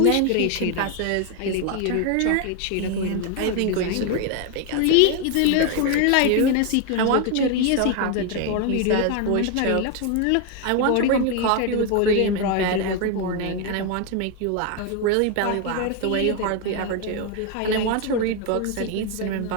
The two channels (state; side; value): different; both; correlation 0.01